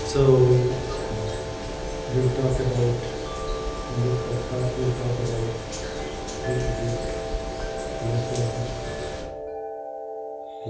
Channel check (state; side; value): identical; both; correlation 1.00